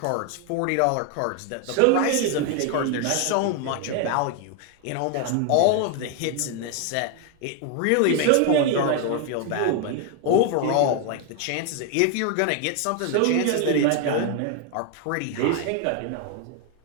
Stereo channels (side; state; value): both; different; correlation 0.01